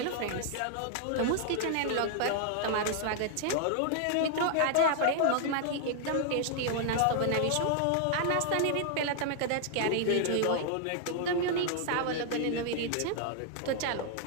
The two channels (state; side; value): different; both; correlation -0.01